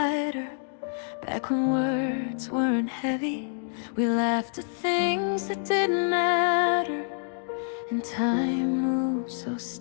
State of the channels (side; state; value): right; silent; digital silence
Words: back when words weren't heavy, we laughed at things that didn't matter, and time moved so